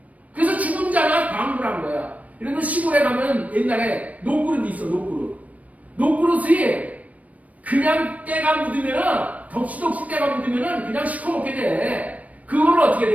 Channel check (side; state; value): left; late; 0.069 ms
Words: 그래서 죽은 자가 방불한 거야. 이런 거 시골에 가면 옛날에 녹그릇이 있어. 녹그릇이 그냥 때가 묻으면은 덕시덕시 때가 묻으면은 그냥 시커멓게 돼. 그걸 어떻게